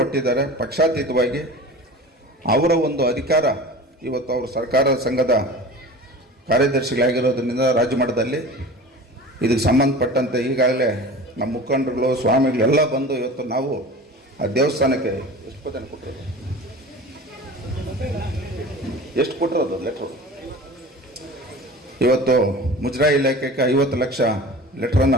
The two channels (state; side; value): normal; both; correlation 0.37